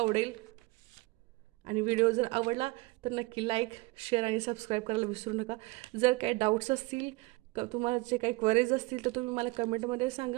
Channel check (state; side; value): quieter; left; 23.0 dB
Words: आणि व्हिडिओ जर आवडला तर नक्की लाईक, शेअर आणि सबस्क्राईब करायला विसरू नका. जर काही डाऊट्स असतील, तुम्हाला जे काही क्वेरीज असतील तर तुम्ही मला कमेंटमध्ये